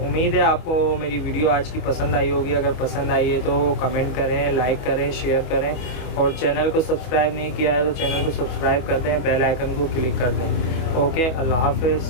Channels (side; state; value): right; late; 25 ms